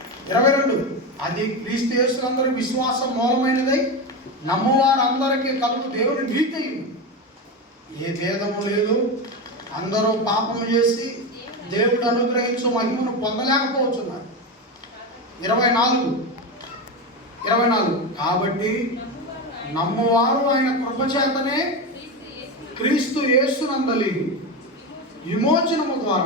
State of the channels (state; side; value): normal; both; correlation 0.17